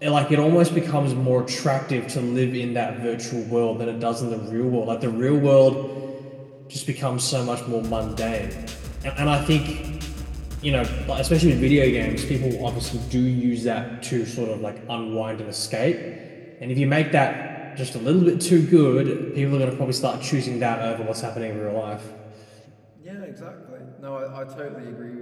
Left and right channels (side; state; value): both; identical; correlation 1.00